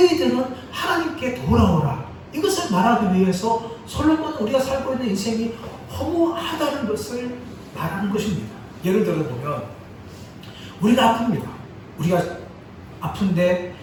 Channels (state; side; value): identical; both; correlation 1.00